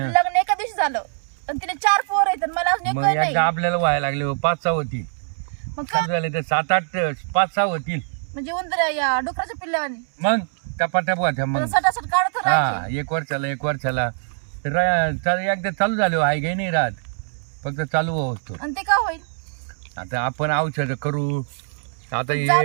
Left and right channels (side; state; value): left; silent; 64 dB below the other